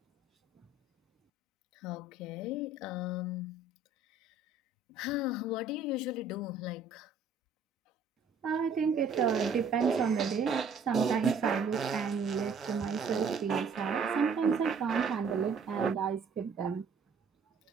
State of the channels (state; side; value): quieter; left; 4.1 dB